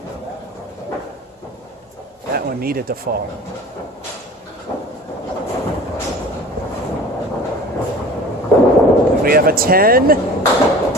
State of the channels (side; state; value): both; normal; correlation 0.41